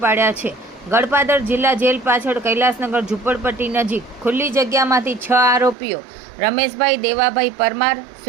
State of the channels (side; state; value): left; drops out; at 5.8 s